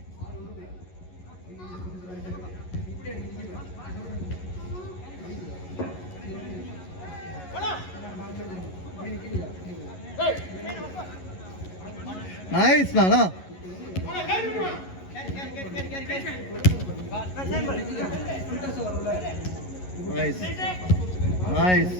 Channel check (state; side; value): late; right; 11 ms